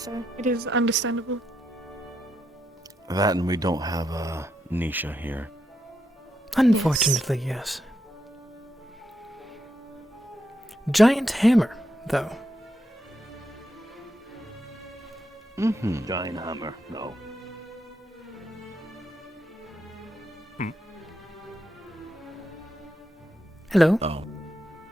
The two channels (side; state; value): both; normal; correlation 0.82